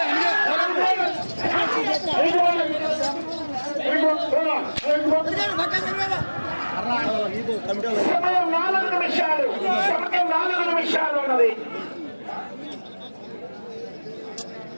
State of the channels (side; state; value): both; inverted; correlation -1.00